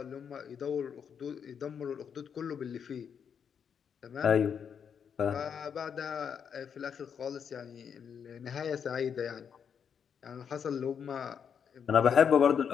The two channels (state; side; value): quieter; right; 7.4 dB